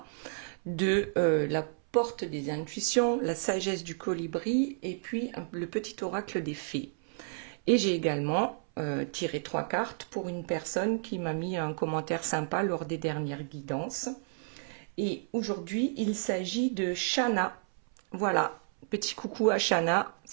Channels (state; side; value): silent; left; 57 dB below the other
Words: de la porte des intuitions, la sagesse du colibri et puis le petit oracle des fées. Et j'ai également tiré 3 cartes pour une personne qui m'a mis un commentaire sympa lors des dernières guidances. Et aujourd'hui, il s'agit de Shana. Voilà, petit coucou à Shana,